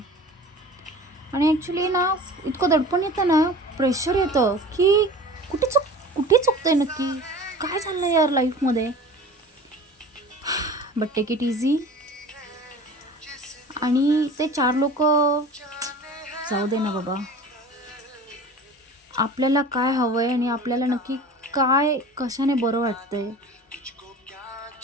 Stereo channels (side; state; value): both; normal; correlation 0.40